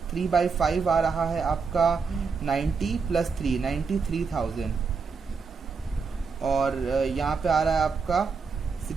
3/5 आ रहा है आपका 90 + 3, 93,000, और यहाँ पे आ रहा है आपका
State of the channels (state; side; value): quieter; left; 5.1 dB